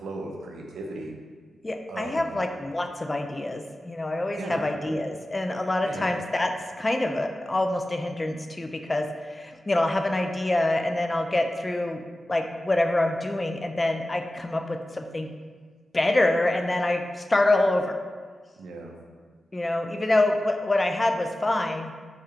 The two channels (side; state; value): both; normal; correlation 0.95